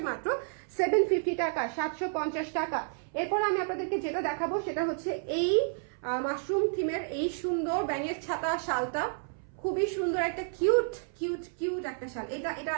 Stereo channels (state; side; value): silent; left; 57 dB below the other